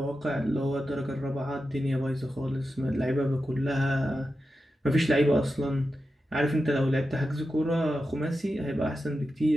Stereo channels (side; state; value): both; normal; correlation 0.90